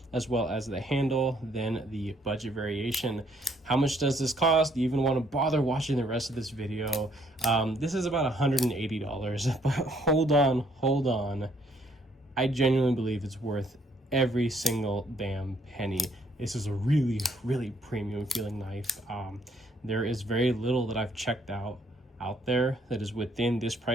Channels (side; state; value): both; normal; correlation 0.67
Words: as well as the handle, than the budget variation. How much does this cost? Do you even want to bother watching the rest of this video? This is about $180, but hold on. I genuinely believe it's worth every single damn penny. This is a really premium feeling knife. There is very little that I've checked out there that is within this